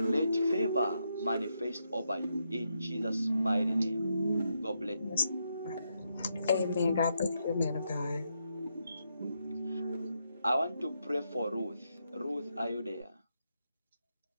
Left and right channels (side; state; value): both; inverted; correlation -0.81